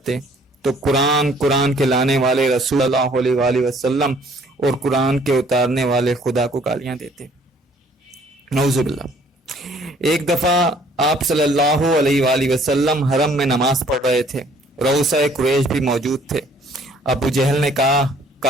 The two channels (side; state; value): both; normal; correlation 0.59